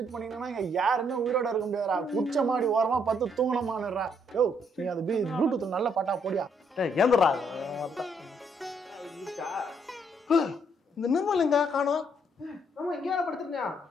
பண்ணிங்கன்னா இங்க யாருமே உயிரோட இருக்க முடியாதுடா. குச்ச மாடி ஓரமா பார்த்து தூங்கணுமான்னுறா. யோ நீ அது ப்ளூடூத்ல நல்ல பாட்டா போடியா. ஏந்துறா இந்த நிர்மல் எங்க காணோம்? ஆமா இங்கே படுத்துருக்கியா?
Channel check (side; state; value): both; normal; correlation 0.71